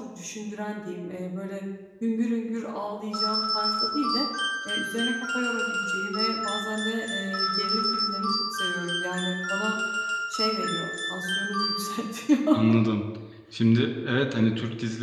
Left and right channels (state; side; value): identical; both; correlation 1.00